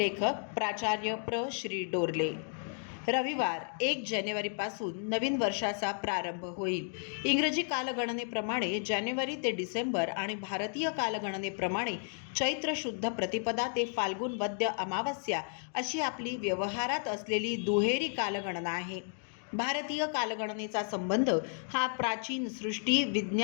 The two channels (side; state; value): right; silent; 56 dB below the other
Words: प्राचार्य श्री डोरले. रविवार 1 जानेवारीपासून नवीन वर्षाचा प्रारंभ होईल. इंग्रजी कालगणनेप्रमाणे जानेवारी ते डिसेंबर आणि भारतीय कालगणनेप्रमाणे चैत्र शुद्ध प्रतिपदा ते फाल्गुन वद्य अमावस्या अशी आपली व्यवहारात असलेली दुहेरी कालगणना आहे. भारतीय कालगणनेचा संबंध हा प्राचीन सृष्टी